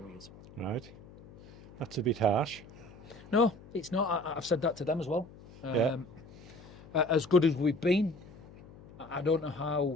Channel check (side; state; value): left; noise; hum, 20 dB below the sound